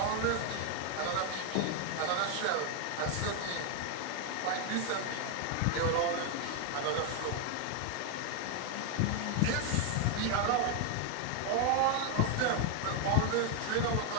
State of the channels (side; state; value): both; different; correlation 0.01